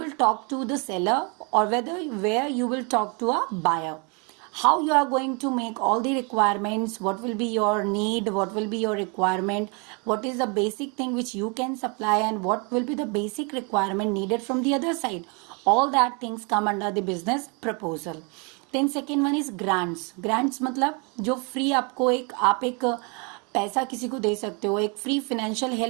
talk to the seller, or where you will talk to a buyer. How you are going to make all the requirements, what will be your need, what will be your requirement, what is the basic thing which you can supply, and what will be the basic requirement needed from the other side. All that things come under the business proposal. Then second one is grants. Grants मतलब जो free आपको आप एक पैसा किसी को दे सकते हो, एक free financial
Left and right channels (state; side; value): quieter; left; 33.3 dB